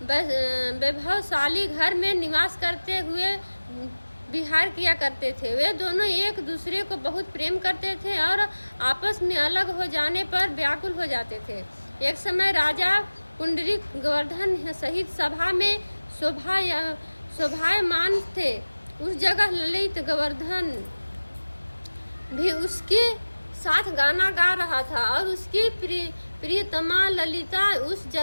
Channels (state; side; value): inverted; both; correlation -1.00